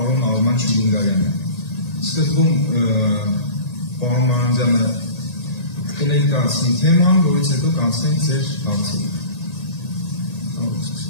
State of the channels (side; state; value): right; late; 1.8 ms